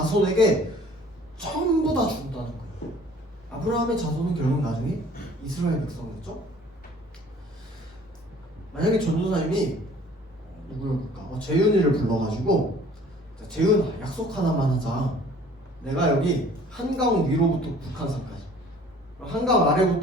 전부 다 준다는 거예요. 아브라함의 자손은 결국 나중에 이스라엘 백성이었죠. 만약에 전도사님이 누구였을까? 재윤이를 불러가지고 재윤 약속 하나만 하자. 내가 여기 한강 위로부터 북한산까지, 한강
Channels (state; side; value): normal; both; correlation 0.52